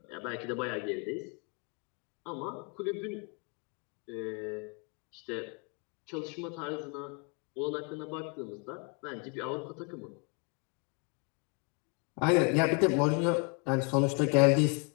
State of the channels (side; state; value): right; quieter; 34.0 dB